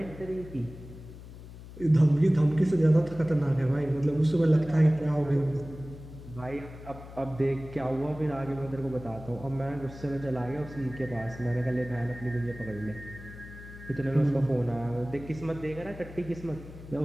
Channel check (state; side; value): noise; left; hum, 15 dB below the sound